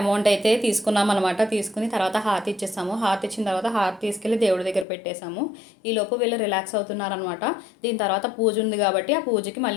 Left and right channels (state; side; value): drops out; right; at 4.9 s